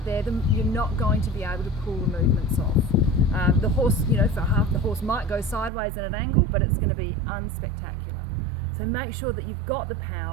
there, then you're not going to be able to pull the movements off. The horse, for half, the horse might go sideways at an angle, but it's going to be unspectacular. So make sure that you've got the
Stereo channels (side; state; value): left; drops out; at 5.7 s